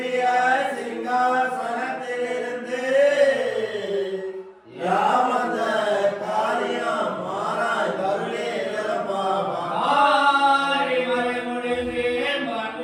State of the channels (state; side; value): identical; both; correlation 1.00